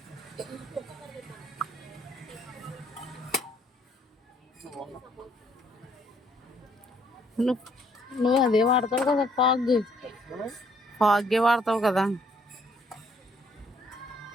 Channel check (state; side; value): normal; both; correlation 0.66